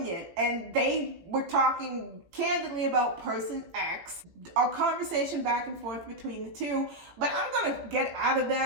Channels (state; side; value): late; left; 18 ms